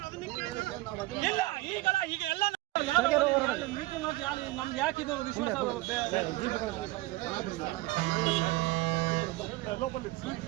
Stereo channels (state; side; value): quieter; left; 19.5 dB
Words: ಇಲ್ಲ ಈಗಲ್ಲ, ಈಗ ಎಲ್ಲ ಮೀಟಿಂಗ್ ಮಾಡಿ ನಮ್ಗೆ ಯಾಕಿದು ವಿಶ್ವಾಸ?